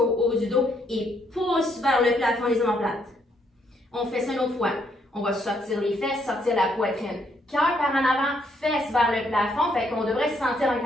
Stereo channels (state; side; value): normal; both; correlation 0.72